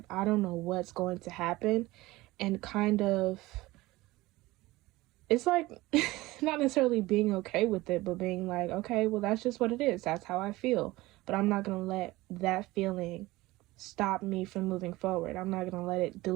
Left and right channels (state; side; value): quieter; left; 19.3 dB